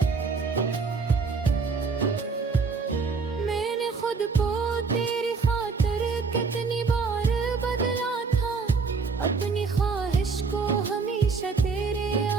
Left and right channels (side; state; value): left; quieter; 4.8 dB